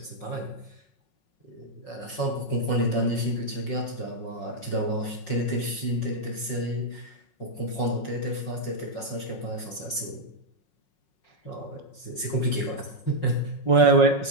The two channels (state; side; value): late; right; 5.5 ms